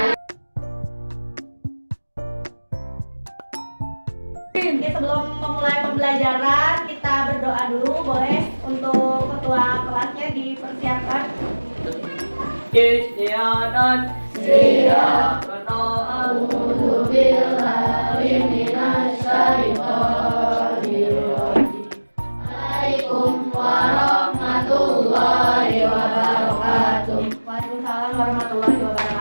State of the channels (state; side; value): inverted; both; correlation -1.00